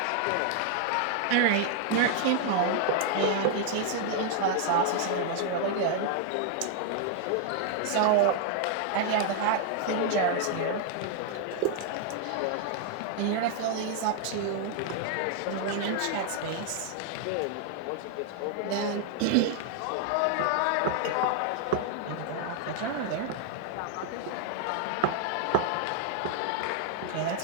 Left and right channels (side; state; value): both; different; correlation 0.00